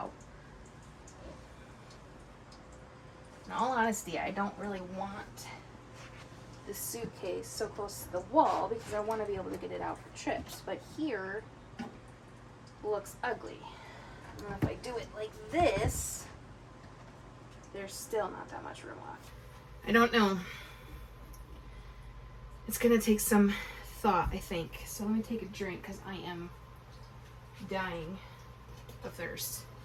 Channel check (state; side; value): identical; both; correlation 1.00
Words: In all honesty, I don't really want the suitcase so close to the wall because I want to be able to get it out for trips. But here looks ugly. And if I do it like this, there's still not that much room left. I don't know. It's gonna take some thought, I think. So let me take a drink because I am dying of thirst.